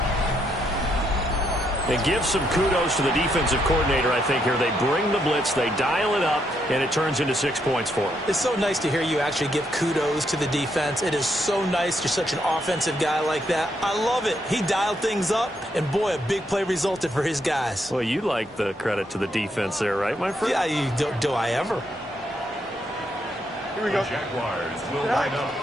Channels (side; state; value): both; normal; correlation 0.77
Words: And give some kudos to the defensive coordinator, I think, here. They bring the blitz, they dial it up, and it turns into 6 points for them. It's so nice to hear you actually give kudos to the defense. It is so nice. You're such an offensive guy like that. I love it. He dialed things up, and boy, a big play resulted for his guys. Well, you like the credit to the defense there, right, my friend? Yeah, do I ever? Here we go. The Jaguars will line up